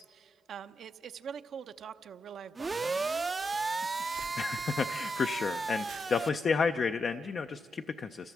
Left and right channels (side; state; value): both; normal; correlation 0.85